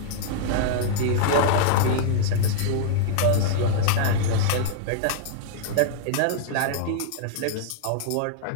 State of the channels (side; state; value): both; different; correlation -0.01